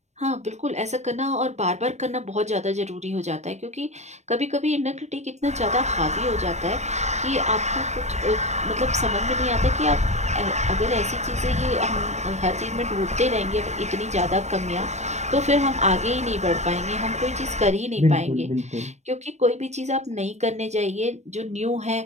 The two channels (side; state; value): left; late; 0.33 ms